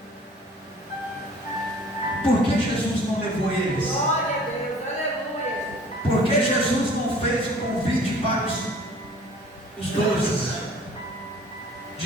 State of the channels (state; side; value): normal; both; correlation 0.50